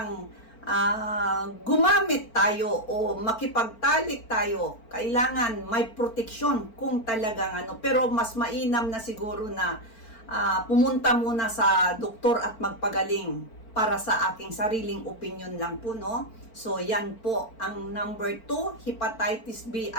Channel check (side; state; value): right; late; 4.4 ms